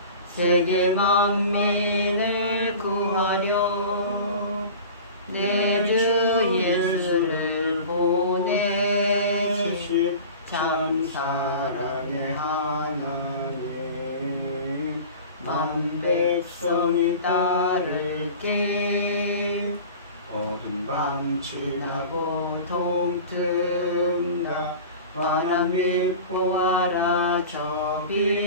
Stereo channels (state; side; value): inverted; both; correlation -0.37